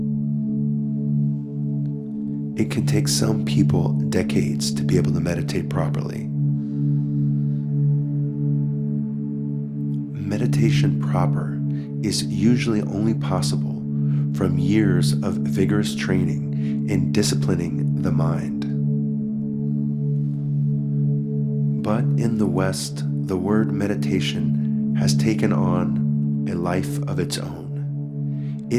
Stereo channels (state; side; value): identical; both; correlation 1.00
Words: It can take some people decades to be able to meditate properly. Meditation proper is usually only possible from years of vigorous training in disciplining the mind. But in the West, the word meditation has taken on a life of its own.